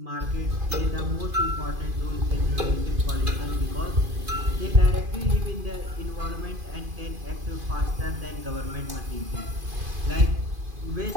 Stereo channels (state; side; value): late; left; 2.5 ms